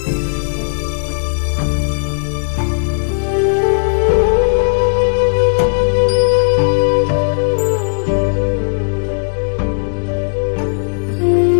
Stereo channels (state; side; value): silent; right; digital silence